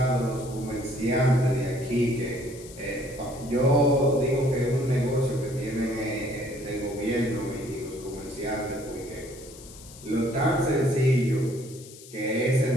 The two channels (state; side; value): noise; left; hiss, 18 dB below the sound